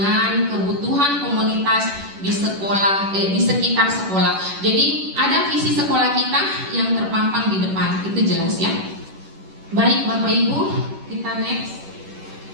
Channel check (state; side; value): late; left; 10 ms